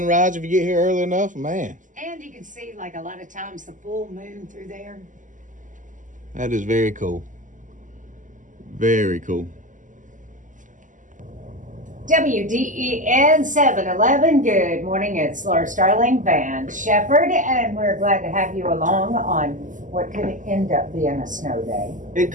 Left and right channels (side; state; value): left; late; 0.37 ms